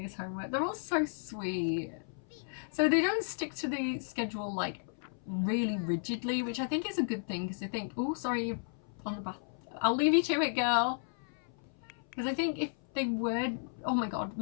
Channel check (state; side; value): silent; right; 55 dB below the other